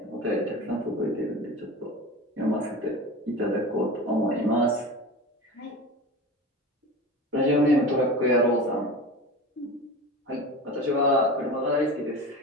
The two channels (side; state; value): both; normal; correlation 0.31